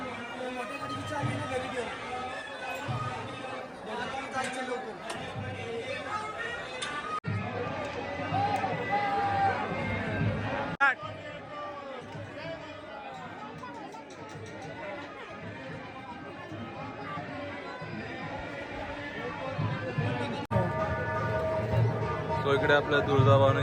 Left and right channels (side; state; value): both; identical; correlation 1.00